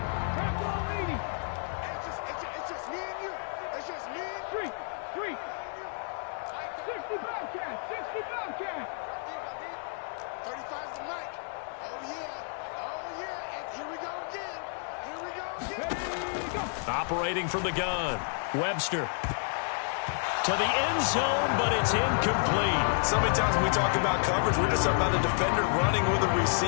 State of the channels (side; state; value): right; silent; 57 dB below the other